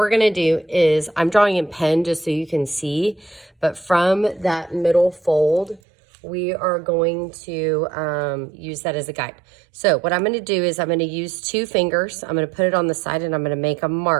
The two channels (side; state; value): left; drops out; at 5.8 s